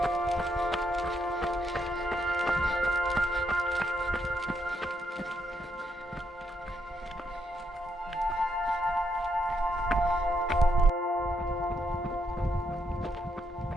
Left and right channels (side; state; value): both; normal; correlation 0.77